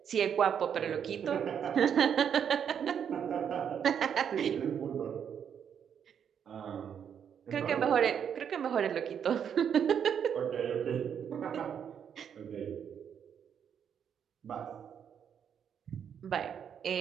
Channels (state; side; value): quieter; left; 8.1 dB